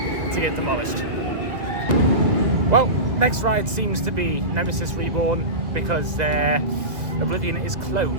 get demolished. Well, next ride seems to be Nemesis Reborn because Oblivion is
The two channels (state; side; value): late; left; 1.7 ms